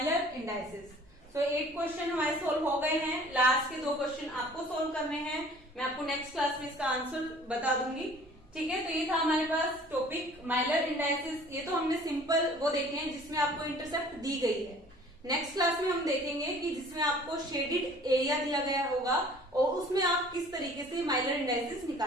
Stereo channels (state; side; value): normal; both; correlation 0.50